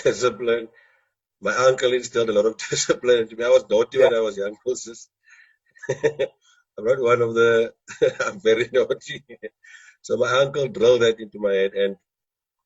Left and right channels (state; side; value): identical; both; correlation 1.00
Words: Discipline. My uncle instilled a lot of discipline into me. I was naughty Yeah, when I was young, Moses. I'm not one of the, I'm very naughty. So my uncle drilled that into my head. And